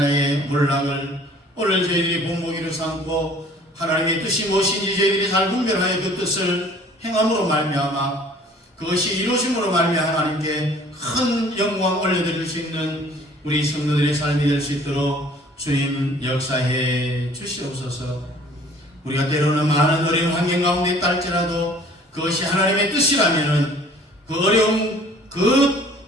몰락을 오늘 저희들이 본보기로 삼고 하나님의 뜻이 무엇인지 저희들이 잘 분별하여 그 뜻을 행함으로 말미암아 그것이 이루어짐으로 말미암아 하나님께 큰 영광 올려드릴 수 있는 우리 성도들의 삶이 될 수 있도록 주님 역사해 주시옵소서. 우리가 때로는 많은 어려운 환경 가운데 있다 할지라도 그것이 하나님의 뜻이라면은 그 어려움 그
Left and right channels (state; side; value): normal; both; correlation 0.53